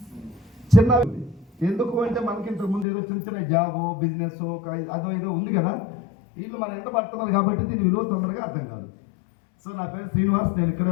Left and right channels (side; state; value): right; drops out; at 2.9 s